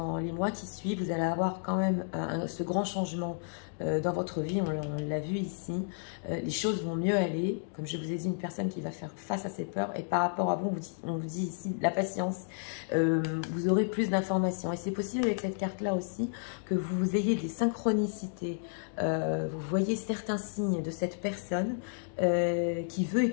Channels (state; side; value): silent; right; digital silence